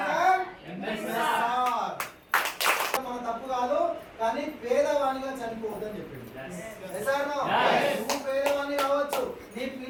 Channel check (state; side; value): identical; both; correlation 1.00